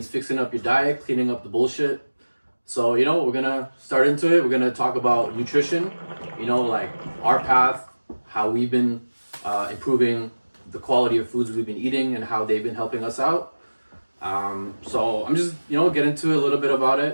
fixing up your diet, cleaning up the bullshit. So, we're going to start into it. We're going to talk about nutrition, like our path, how we've been improving the quality of foods we've been eating and how they've been helping us out. So I'm just, get into a little bit about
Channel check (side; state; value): both; inverted; correlation -1.00